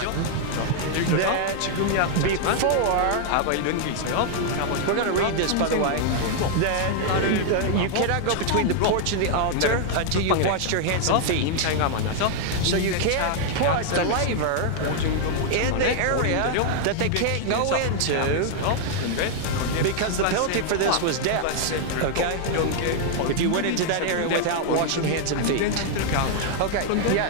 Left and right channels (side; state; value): both; different; correlation 0.00